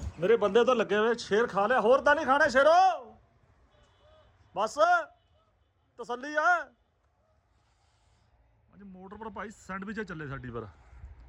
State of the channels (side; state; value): both; identical; correlation 1.00